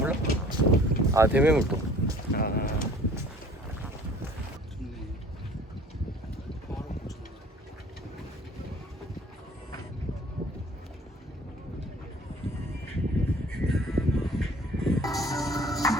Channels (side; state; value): both; normal; correlation 0.51